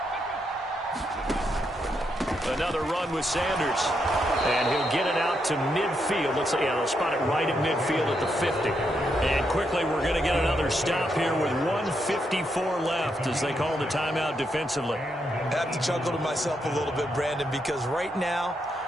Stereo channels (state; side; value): normal; both; correlation 0.80